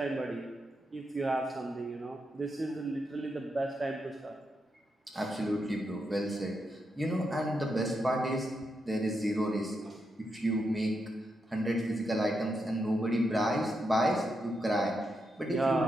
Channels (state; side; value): normal; both; correlation 0.84